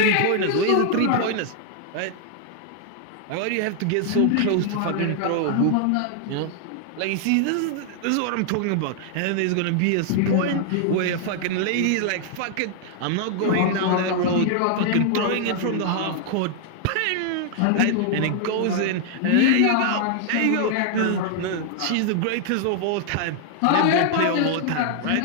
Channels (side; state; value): both; different; correlation 0.00